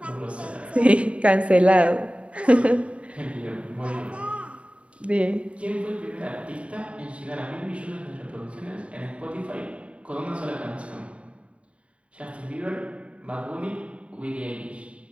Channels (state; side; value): late; left; 0.062 ms